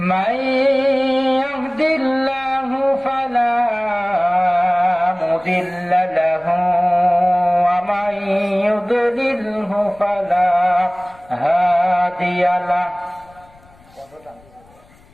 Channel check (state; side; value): noise; left; rumble, 28 dB below the sound